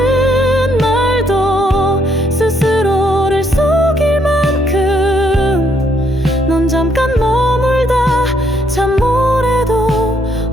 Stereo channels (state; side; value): normal; both; correlation 0.71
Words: 말도 스스로를 속일 만큼 넌 잠깐 머물다 잠몰에도